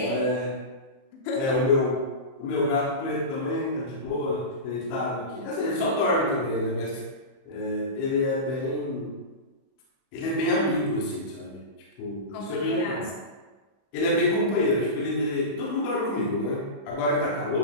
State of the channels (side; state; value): right; late; 31 ms